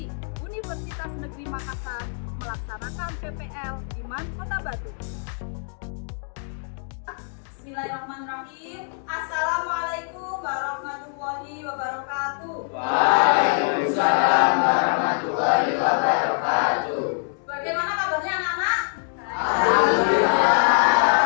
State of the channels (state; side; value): silent; right; digital silence